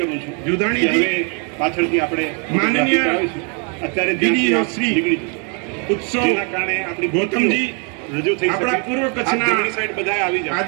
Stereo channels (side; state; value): left; quieter; 37.1 dB